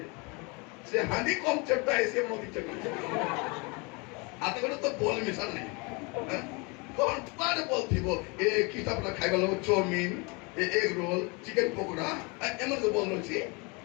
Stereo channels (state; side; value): quieter; right; 29.6 dB